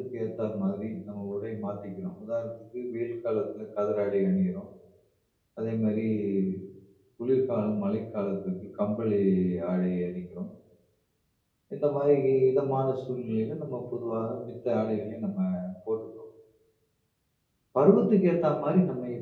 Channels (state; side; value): identical; both; correlation 1.00